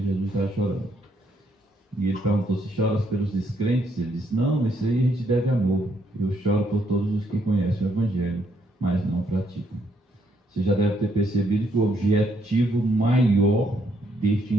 Jesus estava chorando. E ele perguntou: se choras pelos descrentes? Ele disse: não, isso aí a gente deve amor. Eu choro por todos os que conhecem o Evangelho, mas não praticam. Você já deve ter percebido que o objetivo maior deste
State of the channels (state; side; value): normal; both; correlation 0.72